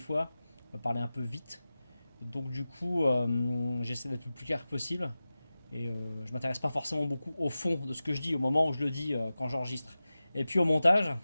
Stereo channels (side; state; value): both; inverted; correlation -0.95